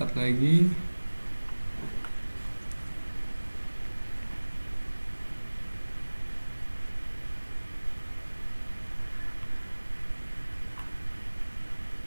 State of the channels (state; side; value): inverted; both; correlation -1.00